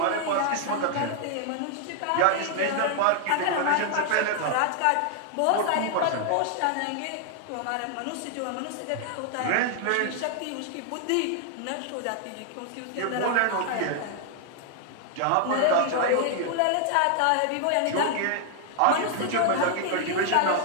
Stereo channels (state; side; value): different; both; correlation 0.00